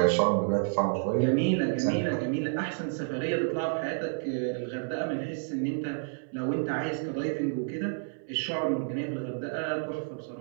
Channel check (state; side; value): silent; left; 58 dB below the other